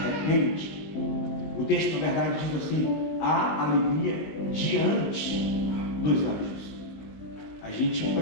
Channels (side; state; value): right; late; 19 ms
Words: o texto na verdade diz assim: há alegria diante dos anjos. A gente